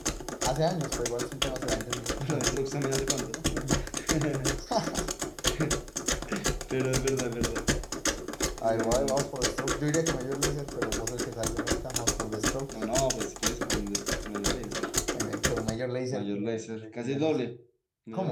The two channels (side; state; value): both; identical; correlation 1.00